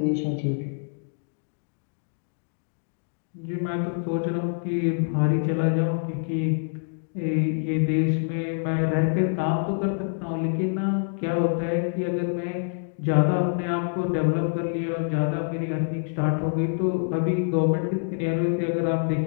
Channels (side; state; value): right; silent; digital silence